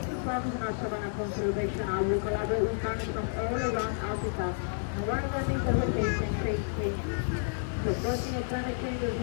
progress in our savanna conservation. We collaborate with partners from all around Africa. And one of the things that we're facing is the worsening of climate change is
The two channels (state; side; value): silent; right; 57 dB below the other